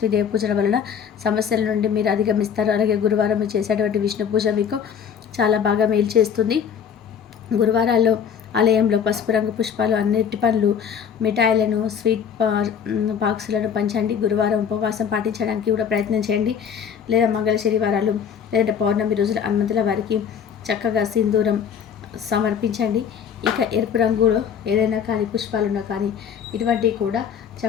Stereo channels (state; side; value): quieter; right; 7.7 dB